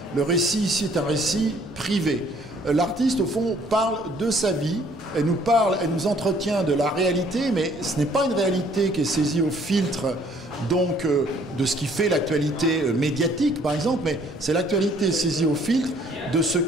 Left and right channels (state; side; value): normal; both; correlation 0.60